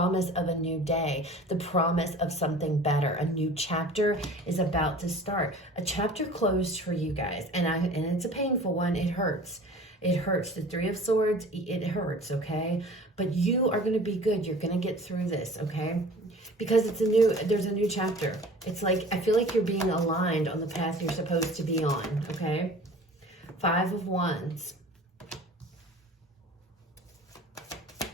of a new day, the promise of something better. A new chapter is about to start. A chapter closed for you guys, and it's a painful one. It hurts. It hurts. The Three of Swords, it hurts, okay? But you are going to be good. You're going to get through this, okay? Because there's a new chapter. It's like, I feel like you're being aligned on the path you're supposed to be on, okay? Five of Wands.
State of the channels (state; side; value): normal; both; correlation 0.44